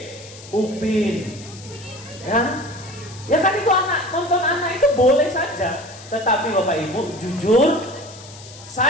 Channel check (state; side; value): noise; left; hiss, 18 dB below the sound